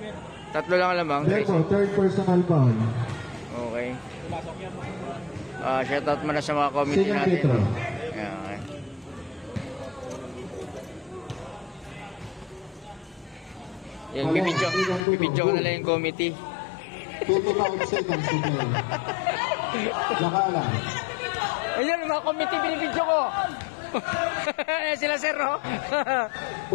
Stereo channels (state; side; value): drops out; right; at 15.1 s